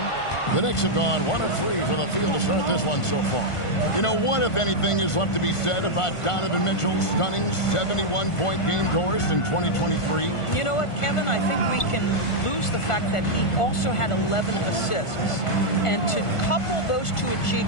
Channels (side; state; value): right; late; 1.5 ms